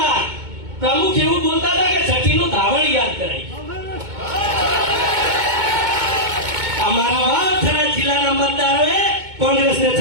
પ્રમુખ એવું બોલતા હતા કે છઠ્ઠીનું ધાવણ યાદ કરાય અમારા વાવથરા જિલ્લાના મતદારોએ કોંગ્રેસને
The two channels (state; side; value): late; left; 2.2 ms